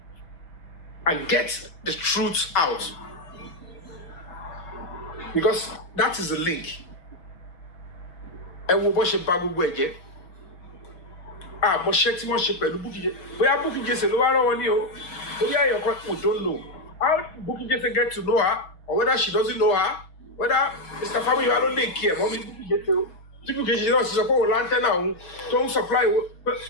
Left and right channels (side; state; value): right; late; 6.1 ms